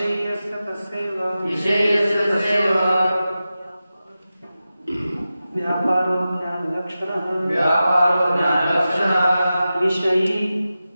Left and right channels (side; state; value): both; inverted; correlation -0.93